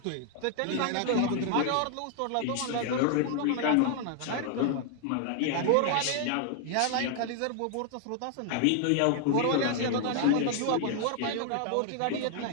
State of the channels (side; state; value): both; different; correlation 0.00